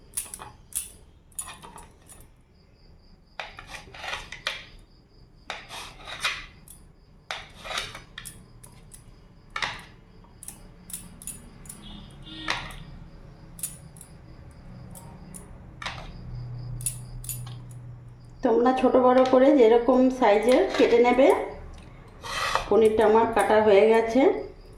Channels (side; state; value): both; identical; correlation 1.00